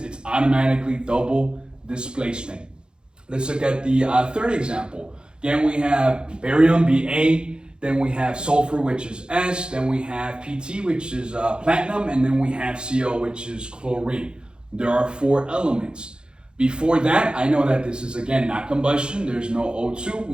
automatically double displacement. Let's look at the third example. Again, we have barium, Ba, then we have sulfur, which is S, then we have Pt, which is platinum, and then we have Cl, which is chlorine. There are 4 elements. Before that, I know that this is, again, not combustion. There's no O2.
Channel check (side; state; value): left; late; 0.050 ms